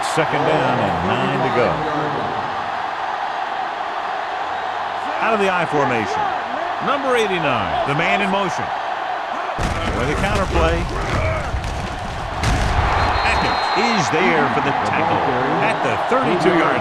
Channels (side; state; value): both; identical; correlation 1.00